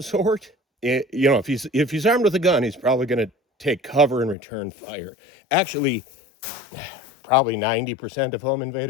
if he's armed with a gun, he's probably going to take cover and return fire. Actually, probably 90% of home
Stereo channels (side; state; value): right; drops out; at 4.4 s